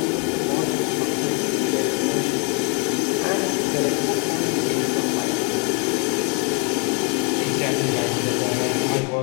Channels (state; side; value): quieter; right; 36.0 dB